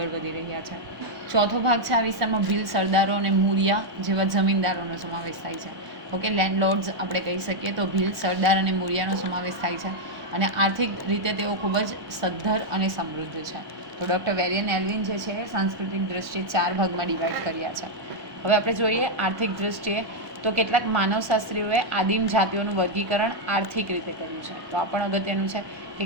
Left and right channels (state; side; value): late; left; 1.1 ms